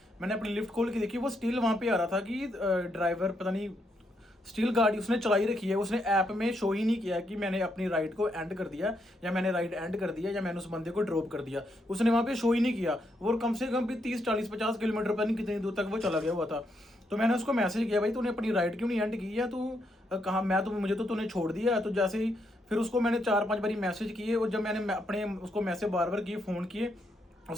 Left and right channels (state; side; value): normal; both; correlation 0.78